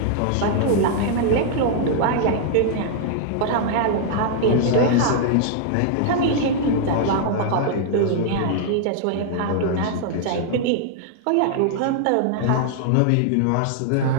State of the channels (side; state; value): both; different; correlation -0.01